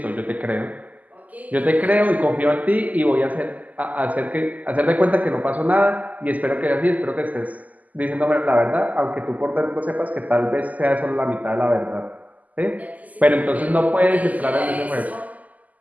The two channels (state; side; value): late; left; 0.078 ms